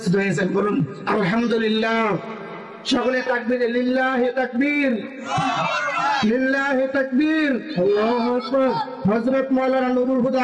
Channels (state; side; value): identical; both; correlation 1.00